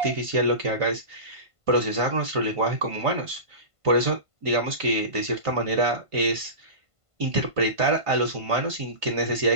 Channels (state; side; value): late; left; 1.5 ms